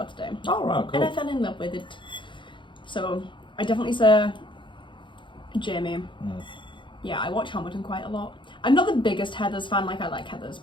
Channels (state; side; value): late; right; 0.23 ms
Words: that? Oh right, And I cool. fell in love with it. So I definitely say Jamie. Mm. Yeah, I watch Hamilton quite a lot. I'm not the biggest Heathers fan, like I like Heathers,